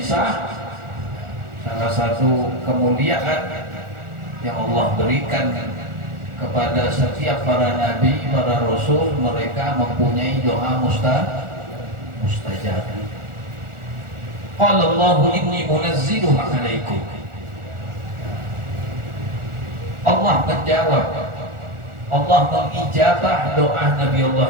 salah satu kemuliaan yang Allah berikan kepada setiap para nabi, para rasul. Mereka mempunyai doa mustajab. Qala Allahu inni munazziluha 'alaikum. Allah menjawab, Allah mengijabah doa Nabi Allah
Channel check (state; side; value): late; left; 1.4 ms